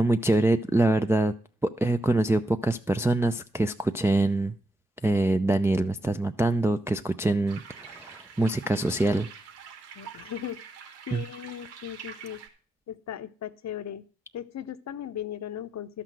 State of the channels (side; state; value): both; normal; correlation 0.85